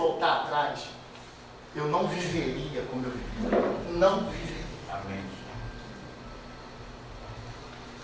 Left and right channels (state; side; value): identical; both; correlation 1.00